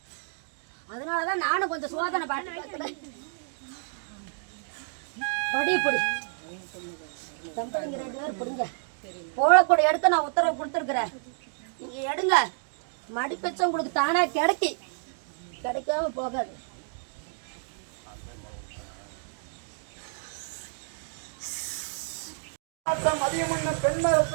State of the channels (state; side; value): silent; left; digital silence